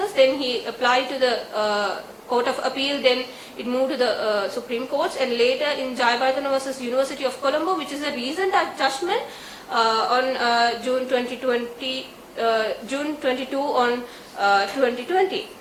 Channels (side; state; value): both; identical; correlation 1.00